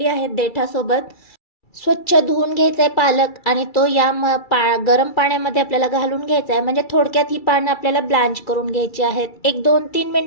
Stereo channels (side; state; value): right; late; 2.3 ms